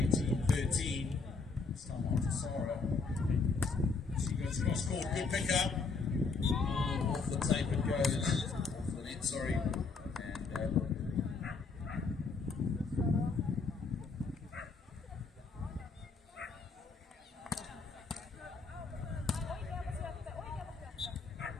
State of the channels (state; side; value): quieter; right; 4.4 dB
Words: 18-13. This time on to Sarah. She goes cross court, good pick up. Off the tape it goes, off the net, sorry. And